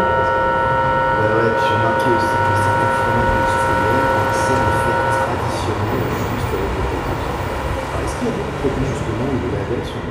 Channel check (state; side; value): identical; both; correlation 1.00